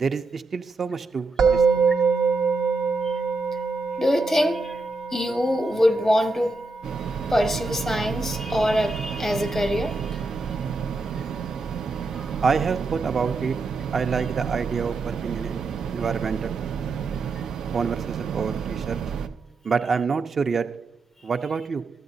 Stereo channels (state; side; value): quieter; left; 3.3 dB